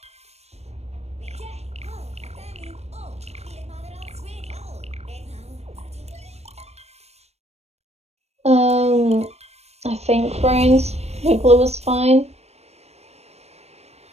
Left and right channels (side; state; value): left; late; 0.31 ms